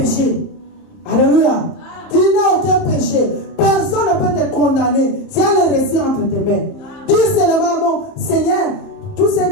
Alléluia. Tu n'as aucun péché. Personne ne peut te condamner. C'est un récit entre tes mains. Dis seulement, mon Seigneur, tout ce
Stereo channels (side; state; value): right; late; 30 ms